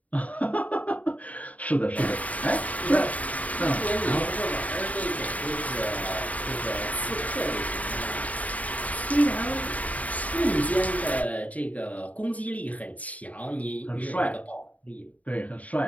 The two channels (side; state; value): right; late; 0.071 ms